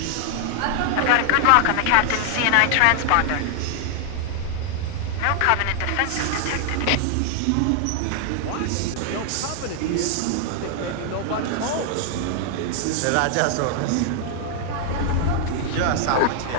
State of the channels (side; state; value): both; different; correlation 0.00